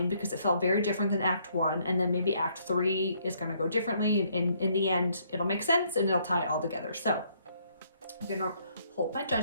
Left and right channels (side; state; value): both; inverted; correlation -0.68